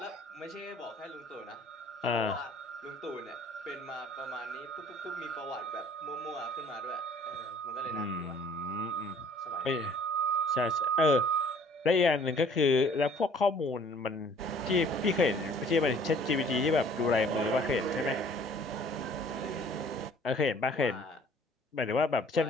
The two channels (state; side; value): normal; both; correlation 0.54